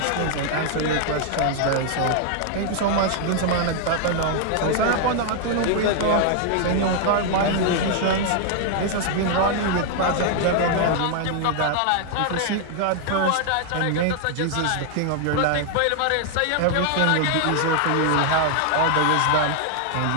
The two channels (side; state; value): both; different; correlation 0.00